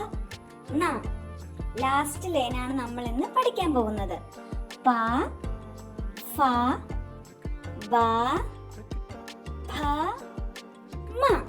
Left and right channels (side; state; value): both; identical; correlation 1.00